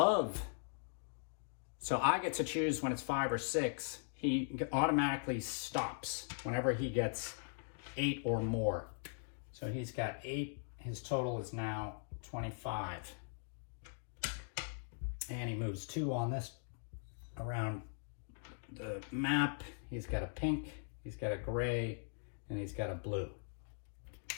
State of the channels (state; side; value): silent; right; digital silence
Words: so I get to choose when it's 5 or 6, he automatically stops whenever he gets 8 or more. So he's got 8. His total is now 25. And he moves 2 on this around the map. He's got a pink, he's got a gray, and he's got a blue.